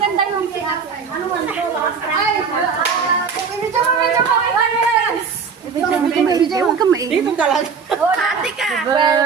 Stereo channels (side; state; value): left; quieter; 5.8 dB